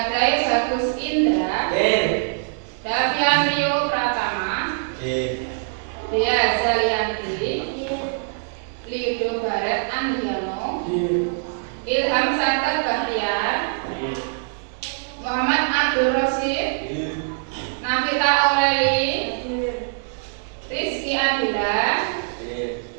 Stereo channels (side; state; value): left; silent; 63 dB below the other